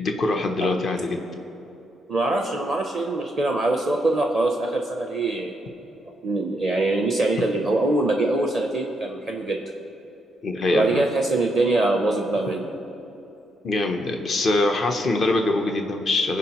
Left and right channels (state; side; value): normal; both; correlation 0.78